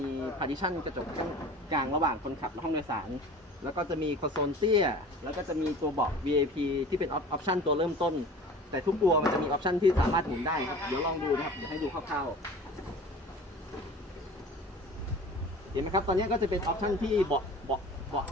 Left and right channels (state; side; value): normal; both; correlation 0.41